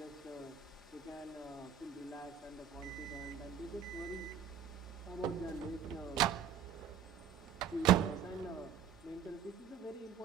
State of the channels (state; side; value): quieter; left; 8.2 dB